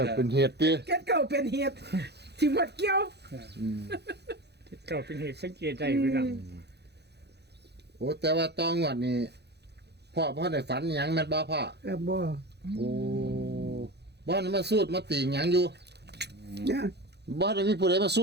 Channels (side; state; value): left; late; 0.48 ms